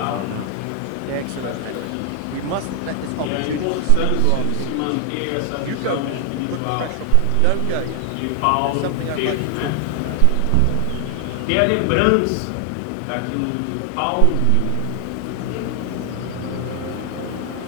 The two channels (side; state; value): both; different; correlation 0.00